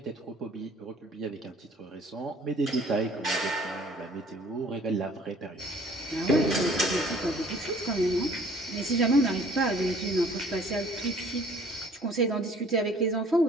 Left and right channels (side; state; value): both; normal; correlation 0.55